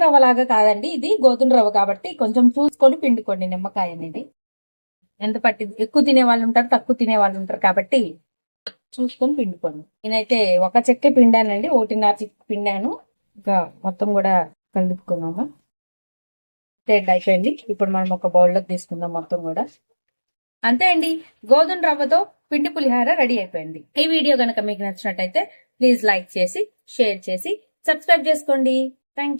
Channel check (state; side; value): inverted; both; correlation -1.00